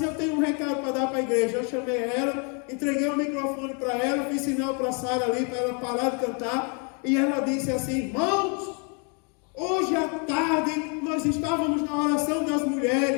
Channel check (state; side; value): quieter; right; 37.0 dB